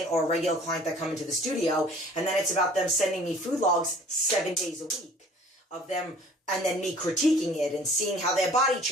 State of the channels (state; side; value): normal; both; correlation 0.50